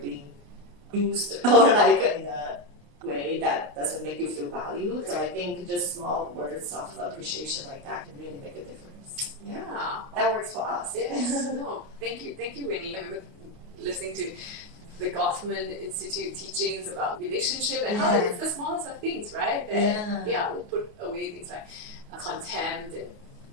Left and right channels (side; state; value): left; late; 28 ms